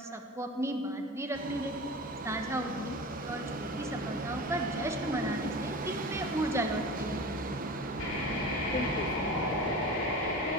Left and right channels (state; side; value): normal; both; correlation 0.33